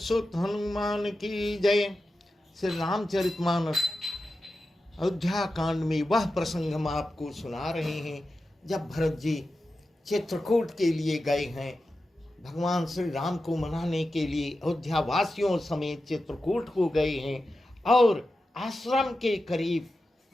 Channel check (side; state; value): both; normal; correlation 0.92